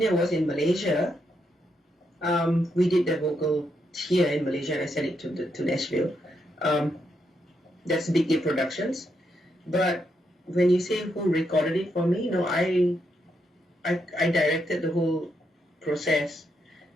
was in Malaysia. We did the vocal here in Malaysia and I sent it to Nashville. That's Big A Productions. But when you say who recorded it for me, no, I directed the whole process.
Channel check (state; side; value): normal; both; correlation 0.80